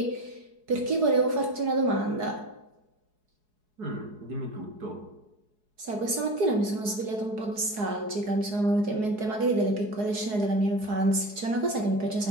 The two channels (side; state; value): left; late; 4.7 ms